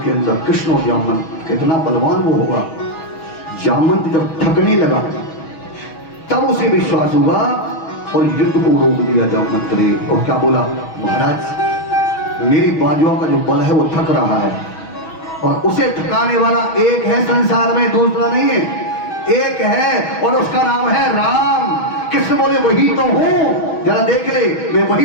के अंदर कृष्ण और जामवंत। कितना बलवान वो होगा। जामवंत जब थकने लगा तब उसे विश्वास हुआ और युद्ध को रोक दिया जामवंत ने। और क्या बोला, महाराज मेरी बाजुओं का जो बल है वो थक रहा है, और उसे थकाने वाला एक है संसार में, दूसरा नहीं है, एक है और उसका नाम है राम। कृष्ण बोले, वही तो हूं, जरा देख ले, मैं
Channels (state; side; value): late; right; 6.2 ms